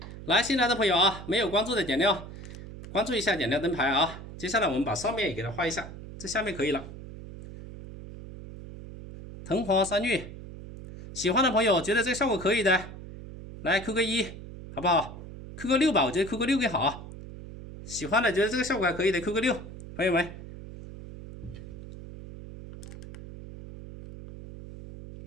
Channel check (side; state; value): right; noise; hum, 13 dB below the sound